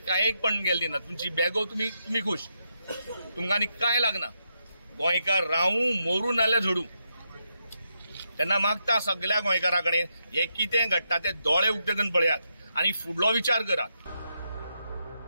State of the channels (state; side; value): inverted; both; correlation -0.83